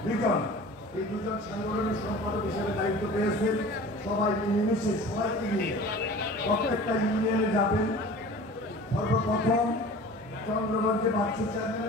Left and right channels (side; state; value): both; normal; correlation 0.41